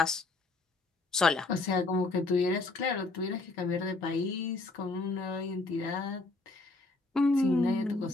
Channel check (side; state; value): right; quieter; 3.4 dB